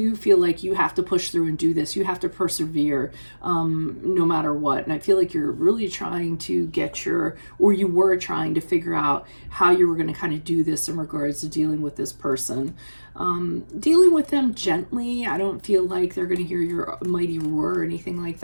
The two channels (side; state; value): both; inverted; correlation -1.00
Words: feel like you have to push through and do this. You have to persevere no matter what. And I feel like you're really trying to you were trying to figure out how you were going to kind of do this in regards to dealing with this person. Dealing with them gently. I don't feel like they're going to hear your mighty roar or anything like